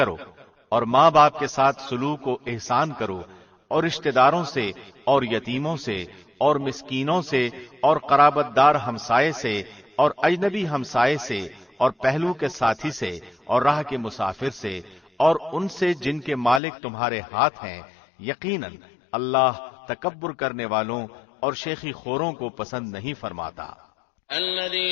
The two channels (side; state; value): right; drops out; at 16.6 s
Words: اور ماں باپ کے ساتھ سلوک و احسان کرو، اور رشتہ داروں سے اور یتیموں سے اور مسکینوں سے اور قرابت دار ہمسائے سے اور اجنبی ہمسائے سے اور پہلو کے ساتھی سے اور راہ کے مسافر سے اور ان سے جن کے مالک تمہارے ہاتھ ہیں. یقیناً اللہ تکبر کرنے والوں اور شیخی خوروں کو پسند نہیں فرماتا.